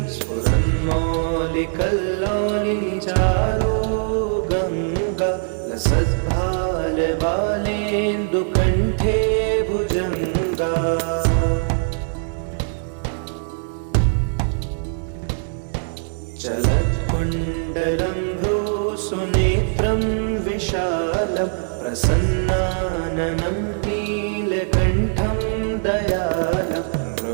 स्फुरन्मौलिकल्लोलिनिचारो गङ्गा लसद्भालबालेन्दुकण्ठे भुजङ्गा चलत्कुण्डलं भ्रूसुनेत्रं विशालं प्रसन्नाननं नीलकण्ठं दयालं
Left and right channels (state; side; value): silent; left; 65 dB below the other